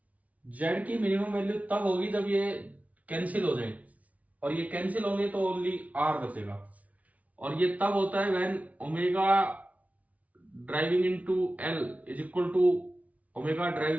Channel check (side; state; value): left; late; 0.069 ms